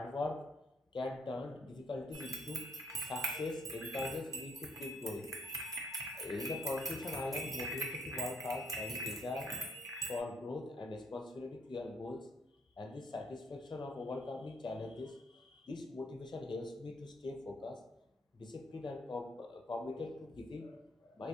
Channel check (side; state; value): both; normal; correlation 0.67